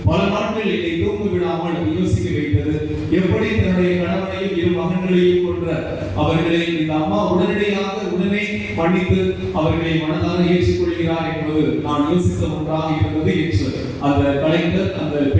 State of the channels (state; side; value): identical; both; correlation 1.00